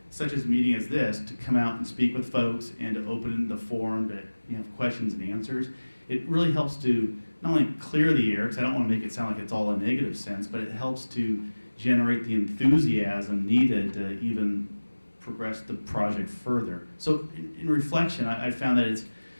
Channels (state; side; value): inverted; both; correlation -1.00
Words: such as a meeting as this, to come out and speak with folks and to open the forum to have questions and answers, it really helps to not only clear the air, because I don't want to make it sound like it's all a negative sense, but it helps to generate the enthusiasm needed to even progress the project further. So in reflection, I found that it's